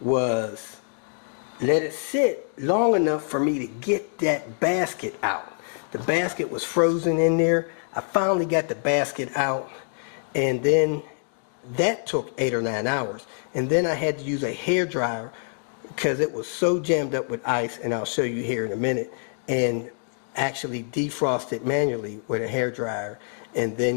let it sit long enough for me to get that basket out. The basket was frozen in there. I finally got the basket out, and then that took 8 or 9 hours. And then I had to use a hair dryer because it was so jammed up with ice, and I'll show you here in a minute, and actually defrost it manually with a hair dryer, and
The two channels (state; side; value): silent; right; 61 dB below the other